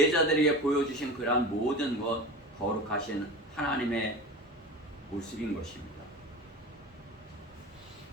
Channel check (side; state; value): both; normal; correlation 0.32